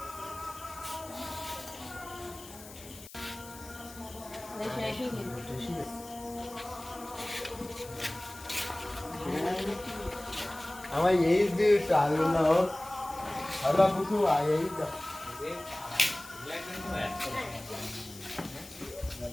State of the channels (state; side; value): noise; left; hiss, 17 dB below the sound